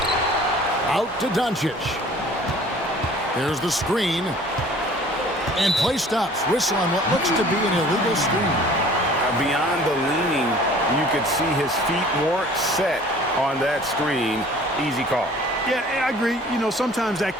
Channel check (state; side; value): normal; both; correlation 0.49